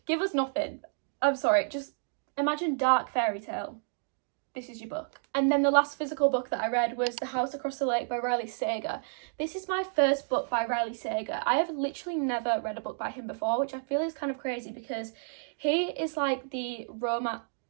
give us nothing. I'm sorry, just imagine dark fairy tale. This is your book. And then the last physical book that I read was The House Across the Lake by Riley Sager. This is my first book by Riley Sager. I have literally never read a book by him before, which I feel is kind of crazy because he is like the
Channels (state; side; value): silent; left; digital silence